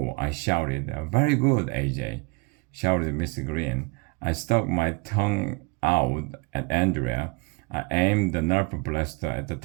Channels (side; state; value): left; quieter; 28.7 dB